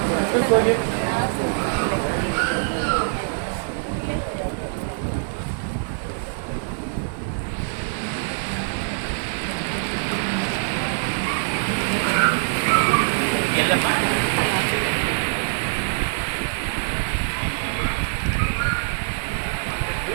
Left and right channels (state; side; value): silent; left; digital silence